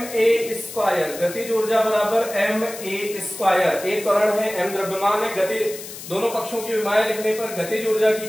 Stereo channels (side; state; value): left; noise; hiss, 12 dB below the sound